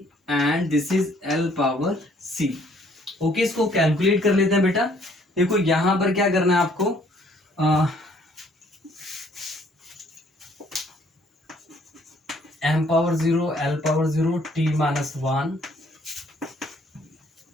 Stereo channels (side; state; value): both; normal; correlation 0.62